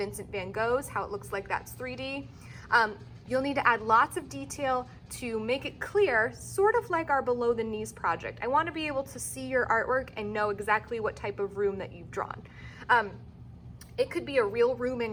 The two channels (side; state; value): both; identical; correlation 1.00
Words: van Gogh's, how it looks like that's 3D. You'll need to add lots of detail to make it clear, sort of like our below the knees project. I want to be able to see your artwork and know exactly what type of room that you've drawn. It could be a real room